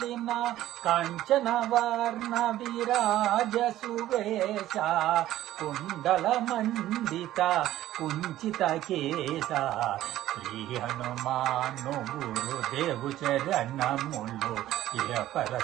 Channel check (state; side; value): quieter; left; 14.0 dB